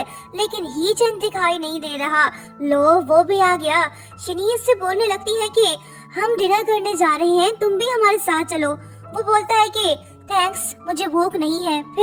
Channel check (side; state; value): both; identical; correlation 1.00